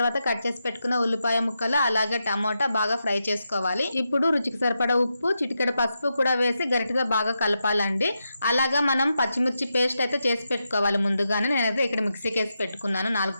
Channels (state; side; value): inverted; both; correlation -0.87